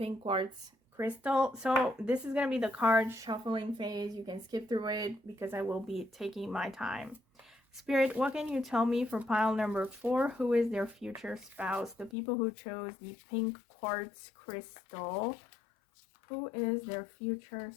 quartz crystal. So this is going to be the card shuffling phase. You can skip through it because I will be taking my time. Spirit, what can you tell me for pile number 4? Who is their future spouse? The people who chose the pink quartz crystal. Who is their future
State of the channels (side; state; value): right; drops out; at 12.2 s